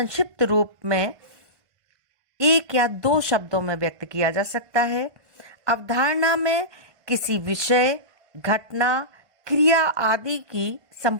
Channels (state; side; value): late; left; 1.5 ms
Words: रूप में एक या दो शब्दों में व्यक्त किया जा सकता है। अवधारणा में किसी विषय, घटना क्रिया आदि की